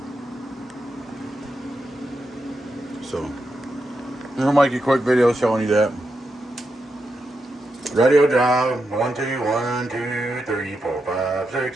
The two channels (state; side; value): normal; both; correlation 0.86